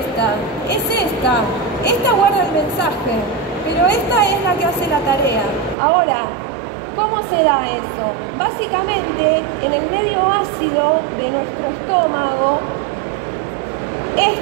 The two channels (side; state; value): left; drops out; at 5.8 s